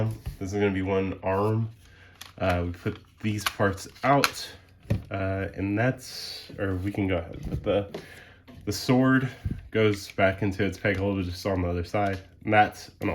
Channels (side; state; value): both; identical; correlation 1.00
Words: This is going to be one arm. We put these parts out, and we can go ahead. But the sword goes back into its peg holder just on the other side, and that's an